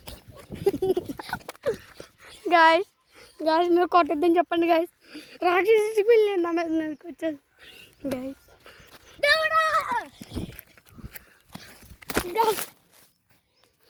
గాయస్ మీరు కొట్టద్దని చెప్పండి గాయస్. రాక్షసి పిల్లి నా మీద మీదకి వచ్చేది గాయస్.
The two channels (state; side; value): identical; both; correlation 1.00